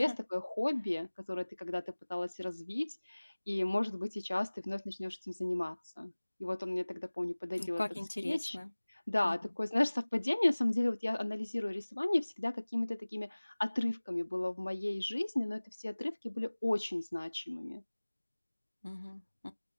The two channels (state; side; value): inverted; both; correlation -1.00